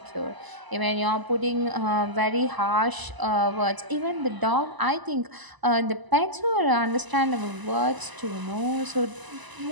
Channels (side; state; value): left; late; 1.0 ms